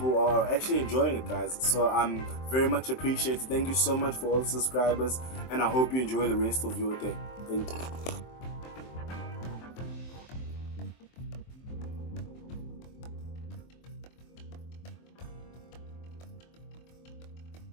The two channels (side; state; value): right; late; 23 ms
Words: are actually enjoying it, guys, so I'm very much appreciated. Thank you so much for all the subscribers, and I hope you enjoy the rest of your day. Thank you.